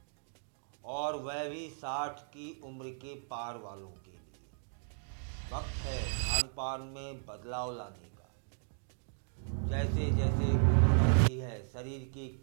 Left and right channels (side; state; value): left; silent; digital silence